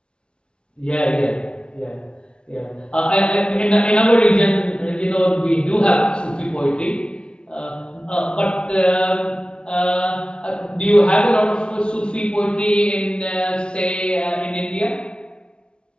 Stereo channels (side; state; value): right; late; 0.054 ms